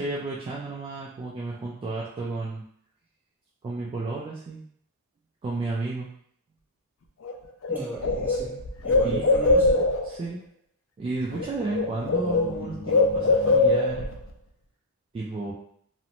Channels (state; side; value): normal; both; correlation -0.15